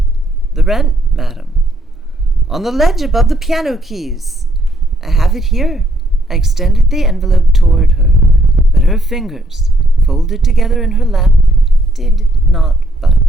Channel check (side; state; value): both; normal; correlation 0.71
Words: "The rent, madam." "On the ledge above the piano keys." "I have it here." I extended the envelope toward her, but her fingers, folded together in her lap, did not